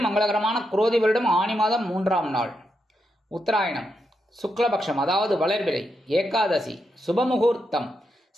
மங்களகரமான குரோதி வருடம் ஆனி மாதம் 3ஆம் நாள், உத்தராயணம், சுக்லபக்ஷம், அதாவது வளர்பிறை, ஏகாதசி, சுபமுகூர்த்தம்,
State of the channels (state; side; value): normal; both; correlation 0.83